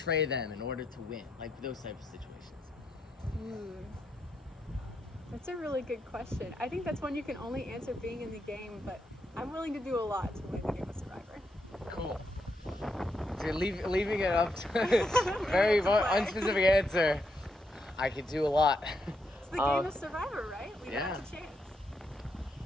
them in order to win? Like those types of situations. That's a really good question. I think that's one you can only answer being in the game, but I'm willing to do a lot to win the game of Survivor. Cool. So you're leaving it up to very unspecific answer. I could do a lot. It's the game of Survivor, right? We Yeah. have a chance.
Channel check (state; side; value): normal; both; correlation 0.80